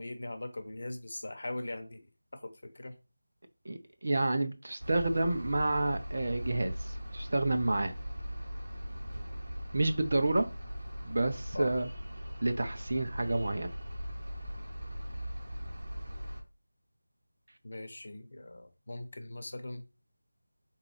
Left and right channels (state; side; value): inverted; both; correlation -0.97